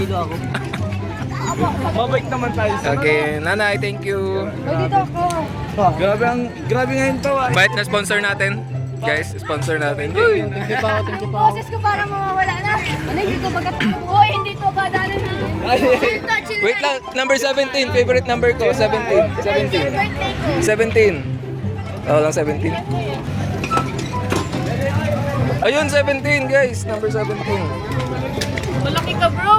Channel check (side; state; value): both; identical; correlation 1.00